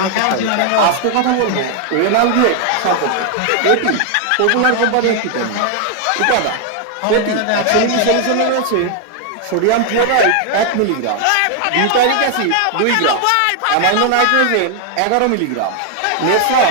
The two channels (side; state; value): both; different; correlation 0.00